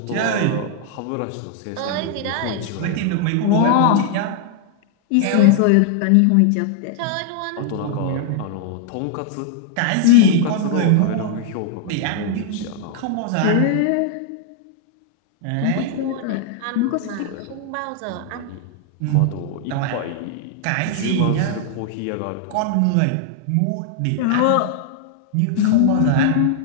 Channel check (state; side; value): different; both; correlation 0.00